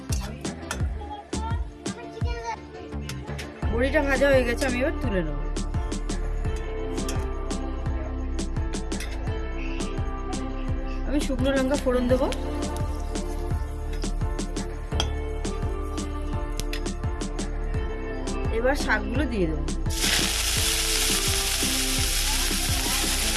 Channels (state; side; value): identical; both; correlation 1.00